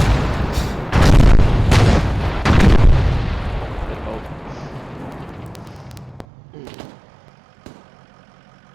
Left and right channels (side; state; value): left; drops out; at 6.2 s